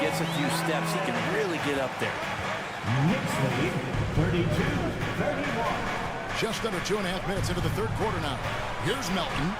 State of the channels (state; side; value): identical; both; correlation 1.00